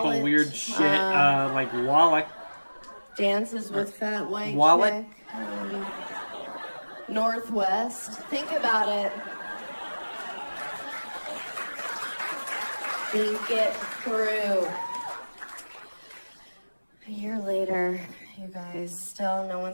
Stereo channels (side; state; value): both; inverted; correlation -1.00